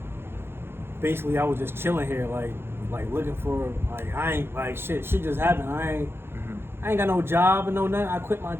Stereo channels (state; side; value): late; left; 0.11 ms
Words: Basically, I was just chilling here, like looking for, I ain't, like, shit just happened. I ain't got no job and no nothing. I quit my